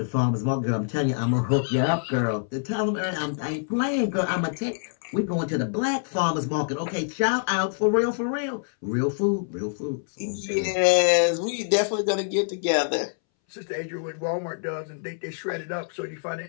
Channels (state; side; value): silent; right; 61 dB below the other